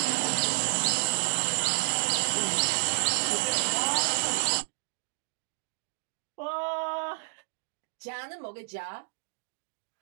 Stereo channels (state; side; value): silent; left; digital silence